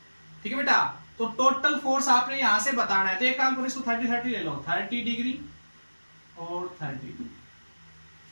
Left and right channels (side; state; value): both; inverted; correlation -1.00